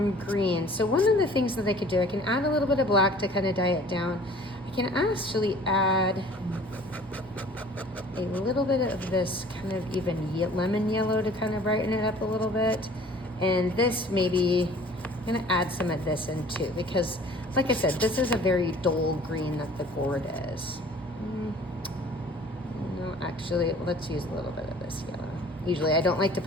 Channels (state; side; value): normal; both; correlation 0.49